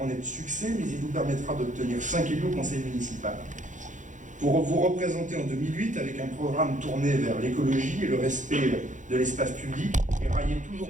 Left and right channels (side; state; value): left; late; 0.36 ms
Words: de succès, mais il vous permettra d'obtenir 5 élus au conseil municipal. Pour vous représenter en 2008 avec un programme tourné vers l'écologie et le respect de l'espace public et railler toujours